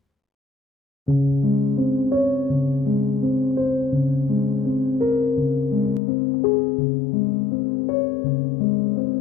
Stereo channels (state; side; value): drops out; right; at 6.0 s